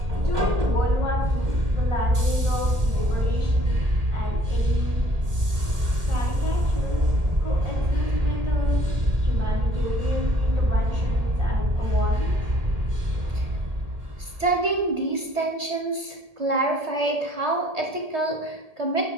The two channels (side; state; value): left; late; 1.8 ms